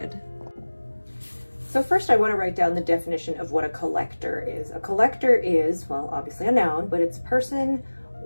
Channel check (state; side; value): inverted; both; correlation -1.00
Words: So first I want to write down the definition of what a collector is. A collector is, well, obviously a noun, but it's a person